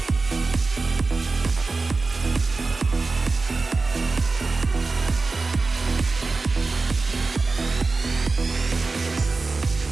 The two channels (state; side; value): quieter; left; 3.9 dB